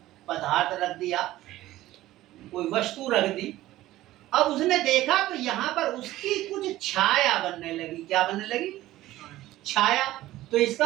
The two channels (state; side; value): quieter; left; 15.7 dB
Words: पदार्थ रख दिया, कोई वस्तु रख दी। अब उसने देखा तो यहाँ पर उसकी कुछ छाया बनने लगी। क्या बनने लगी? छाया। तो